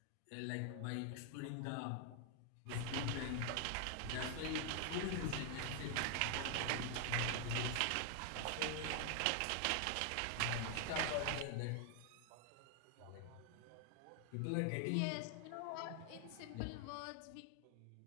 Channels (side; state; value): both; different; correlation 0.00